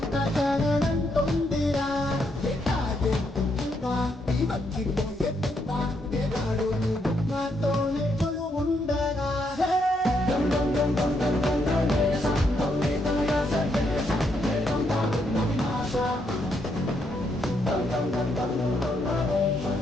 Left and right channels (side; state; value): both; normal; correlation 0.76